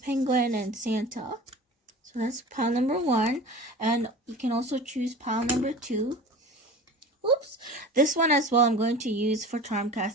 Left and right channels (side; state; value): both; normal; correlation 0.37